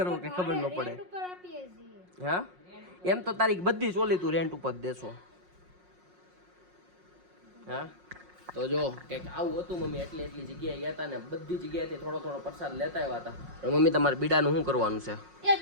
કે ખબર ન પડે. રેન્ટ ઉપર આપીએ છીએ. હા એમ તો તારી બધી ચોલી તું રેન્ટ ઉપર દેશો. હા તો જો કંઈક આવું હતું મમ્મી એટલી જગ્યાએ ગયા હતા ને બધી જગ્યાએથી થોડો થોડો પ્રસાદ લેતા આવ્યા હતા. પણ મમ્મી તમારે બીડાનું શું કરવાનું છે એક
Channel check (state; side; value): late; left; 5.5 ms